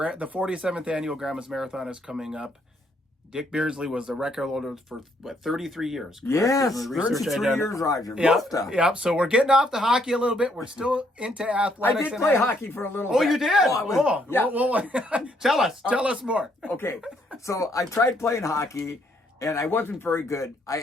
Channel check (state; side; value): normal; both; correlation 0.70